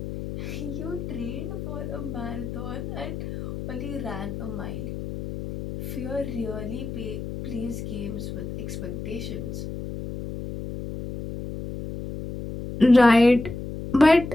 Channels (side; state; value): left; noise; hum, 7 dB below the sound